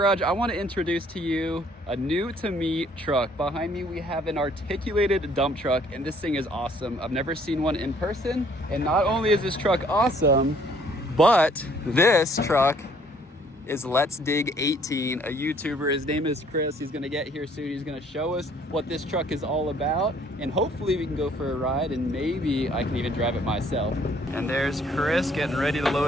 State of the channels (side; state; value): both; normal; correlation 0.61